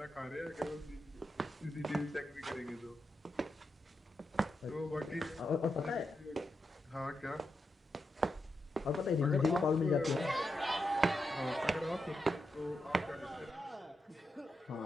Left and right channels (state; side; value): normal; both; correlation 0.86